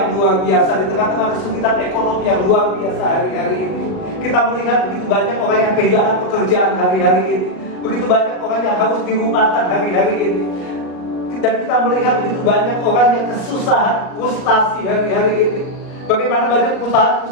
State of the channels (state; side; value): late; right; 38 ms